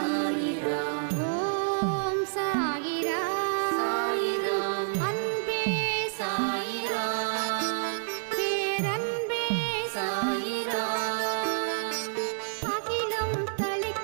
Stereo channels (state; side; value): silent; left; 57 dB below the other